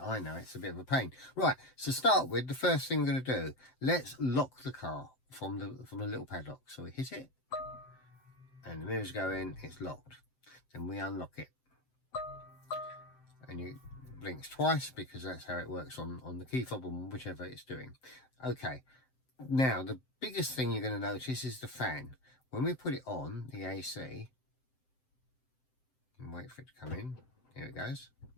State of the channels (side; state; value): right; late; 7.7 ms